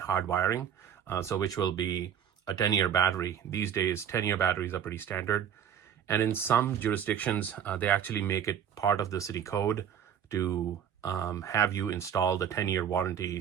wiring, so which will be a 10-year battery. These days, 10-year batteries are pretty standard. And in some jurisdictions, they actually make it part of the city code to have you install the 10-year warranty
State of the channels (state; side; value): quieter; left; 8.8 dB